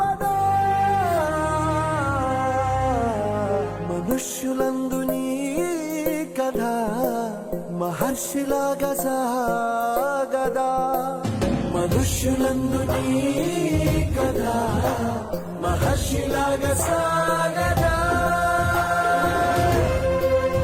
మనుష్యులందు నీ కథ మహర్షిలాగా సాగదా. మనుష్యులందు నీ కథ మహర్షిలాగా సాగదా.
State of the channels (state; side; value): identical; both; correlation 1.00